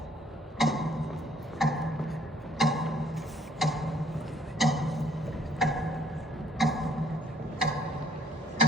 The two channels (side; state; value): both; normal; correlation 0.62